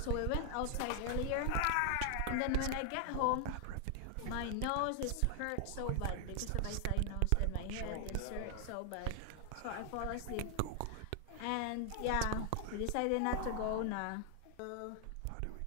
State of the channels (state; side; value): different; both; correlation 0.00